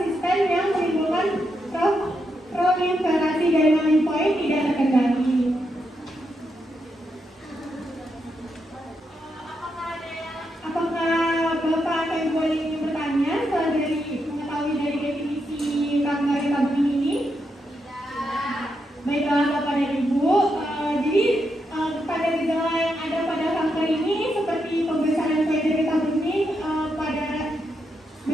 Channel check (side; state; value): both; normal; correlation 0.83